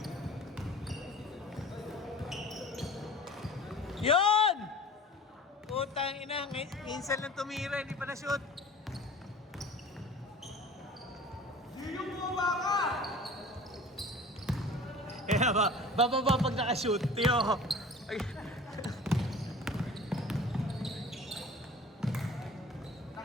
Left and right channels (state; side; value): normal; both; correlation 0.42